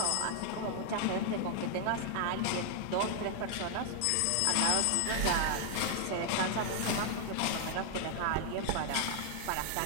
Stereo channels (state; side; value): different; both; correlation 0.00